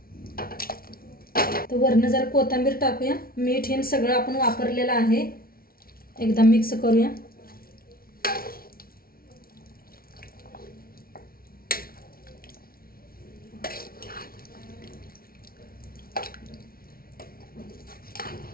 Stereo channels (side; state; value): right; late; 0.43 ms